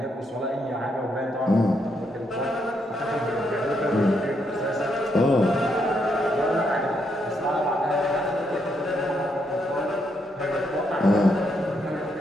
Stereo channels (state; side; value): normal; both; correlation 0.77